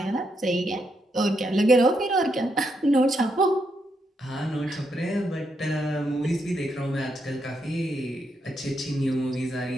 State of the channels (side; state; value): both; normal; correlation 0.80